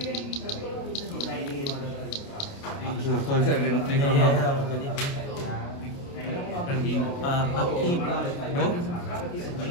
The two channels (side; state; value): right; late; 29 ms